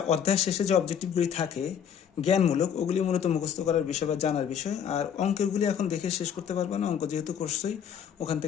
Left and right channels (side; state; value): right; quieter; 8.3 dB